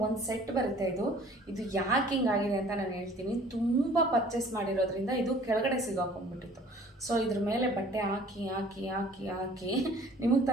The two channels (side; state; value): both; normal; correlation 0.52